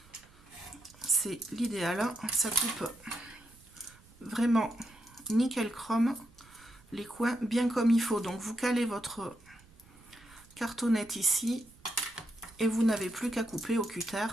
C'est l'idéal. Ça coupe vraiment nickel chrome les coins bien comme il faut. Donc vous calez votre cartonnette ici et vous n'avez plus qu'à couper au cutter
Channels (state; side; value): noise; right; rumble, 26 dB below the sound